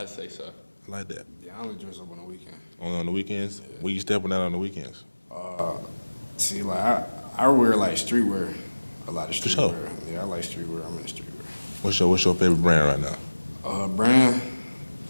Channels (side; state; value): both; inverted; correlation -1.00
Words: I'd say so. I like that. Yeah, I only dress up on the weekend. Only on the weekends. Where you stepping out on the weekends? See, like, I wear, like, streetwear. A lot of streetwear. sure. Yeah, I like streetwear. I'm in the streetwear. What's your favorite brand right now? Brand,